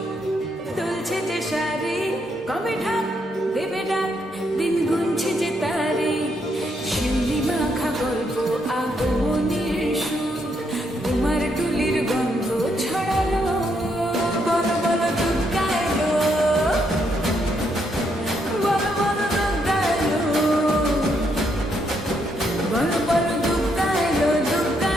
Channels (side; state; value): both; normal; correlation 0.76